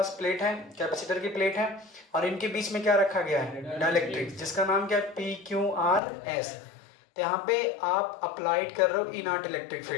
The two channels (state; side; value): drops out; right; at 6.0 s